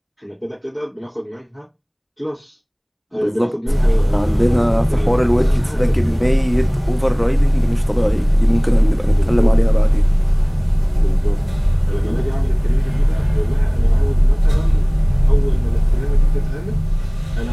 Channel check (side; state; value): both; identical; correlation 1.00